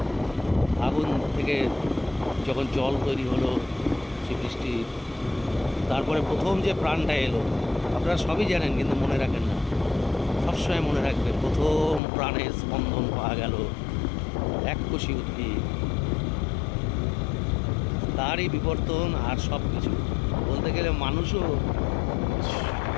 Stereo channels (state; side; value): drops out; right; at 12.0 s